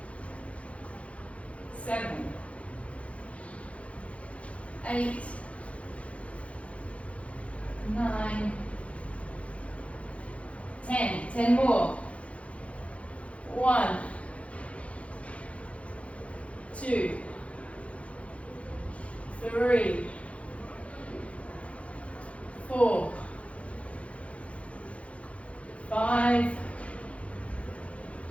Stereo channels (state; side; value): late; right; 0.063 ms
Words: 7, 8, 9, 10. 10 more. 1, 2, 3, 4, 5,